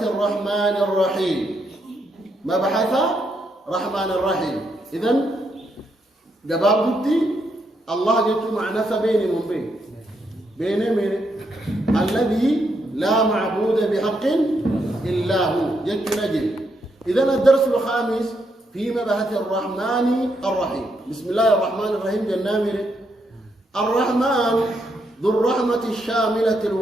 الرحمن الرحيم. مبحث رحمن الرحيم. إذن جباب بدي الله جت معنى بيني من بين من الذي لا معبود بحق إلا هو جت نجي. إذن الدرس الخامس في مبحث الرحمن الرحيم. بسم الله الرحمن الرحيم. جنامر الرحمن ذو الرحمة الشاملة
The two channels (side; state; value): both; normal; correlation 0.78